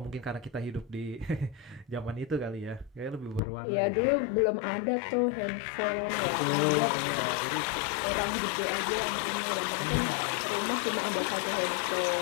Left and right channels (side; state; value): right; drops out; at 3.4 s